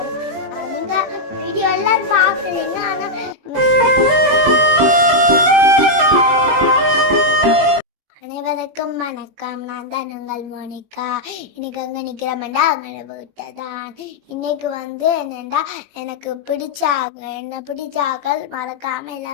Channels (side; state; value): left; late; 21 ms